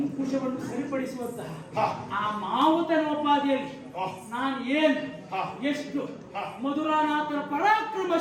ಸರಿಪಡಿಸುವಂತಹ ಆ ಮಾವುತನೋಪಾದಿಯಲ್ಲಿ ನಾನು ಏನು ಎಷ್ಟು ಮಧುರಾನಾಥನ ಪರಾಕ್ರಮ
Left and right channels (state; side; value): identical; both; correlation 1.00